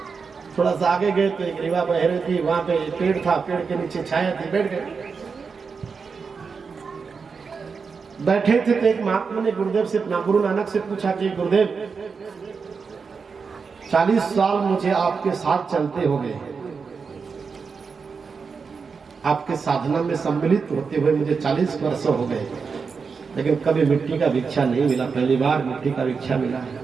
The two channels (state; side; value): quieter; left; 5.3 dB